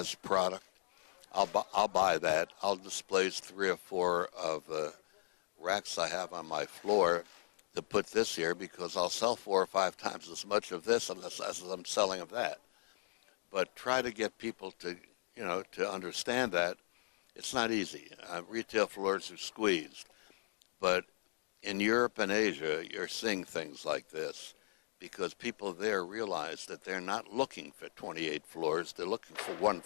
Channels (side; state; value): right; silent; digital silence